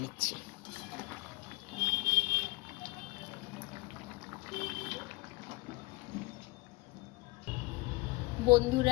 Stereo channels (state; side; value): quieter; right; 24.0 dB